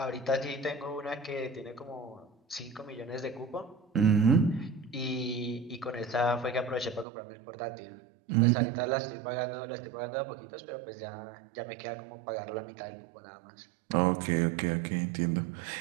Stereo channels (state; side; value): drops out; left; at 7.1 s